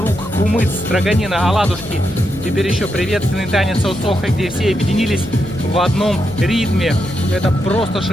кумыц, строганина, оладушки. Теперь еще приветственный танец Осоха, где все объединились в одном ритме. Это просто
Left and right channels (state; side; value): noise; left; hum, 15 dB below the sound